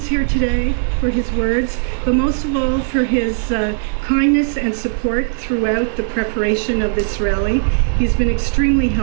here today, for his words, but most of all for his kindness and support throughout the preparation of this rally. He's been extremely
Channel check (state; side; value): silent; left; digital silence